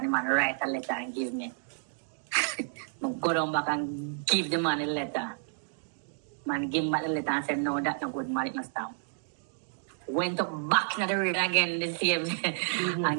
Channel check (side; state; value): left; silent; digital silence